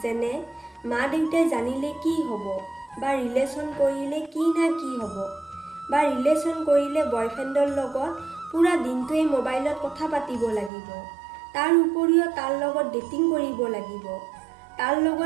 যেনে মা দেউতাই জানিলে কি হ'ব, বা ৰিলেশ্যন কৰিলে কি না কি হ'ব, বা ৰিলেশ্যন কৰিলে বয়ফ্ৰেণ্ডৰ লগত পুৰা দিনটোৱেই মোবাইলত কথা পাতিব লাগিব, তাৰ উপৰিও তাৰ লগত ডেটিং কৰিব লাগিব, তাৰ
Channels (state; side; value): drops out; left; at 10.7 s